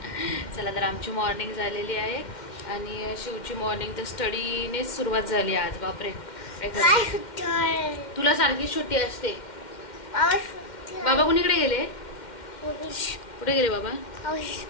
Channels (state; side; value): late; right; 2.1 ms